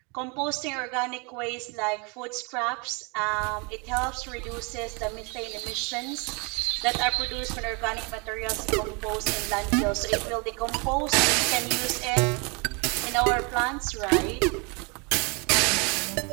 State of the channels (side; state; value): left; quieter; 31.7 dB